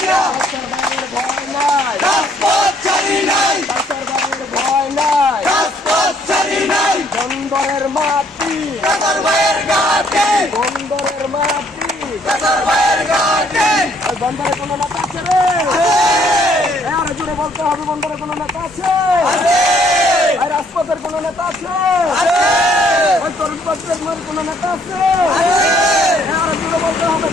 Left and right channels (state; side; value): normal; both; correlation 0.65